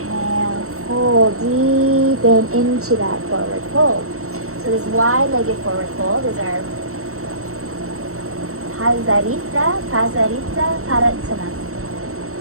fold, deepen into that forward fold. So this wide-legged forward fold is our Prasarita, Padottanasana.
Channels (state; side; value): late; left; 0.63 ms